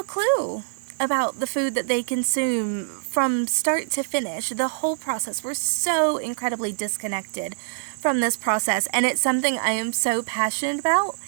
clue about the food that they consume from start to finish, the whole process. We're so incredibly disconnected from this process, and it's something I am so passionate about.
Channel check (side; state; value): left; silent; 62 dB below the other